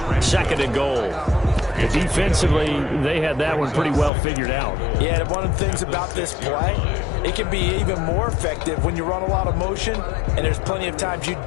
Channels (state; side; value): drops out; right; at 4.1 s